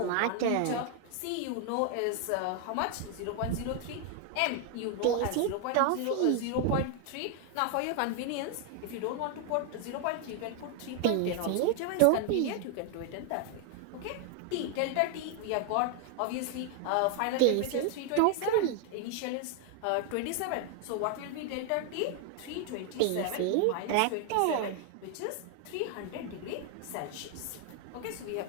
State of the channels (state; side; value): different; both; correlation 0.00